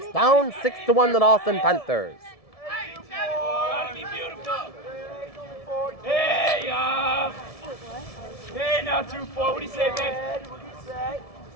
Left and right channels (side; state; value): right; late; 1.7 ms